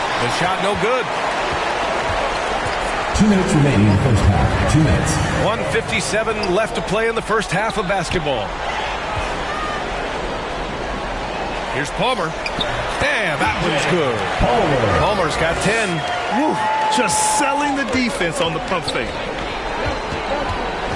shot no good. 2 minutes remaining in the first half. 2 minutes. 1:57 left to play in the first half of basketball. Here's Palmer. Damn, that one's good. Palmer's got 10. Woo, just selling the defense on the pump fake.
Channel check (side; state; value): both; identical; correlation 1.00